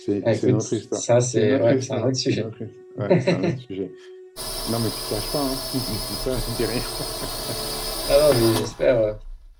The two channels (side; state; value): both; identical; correlation 1.00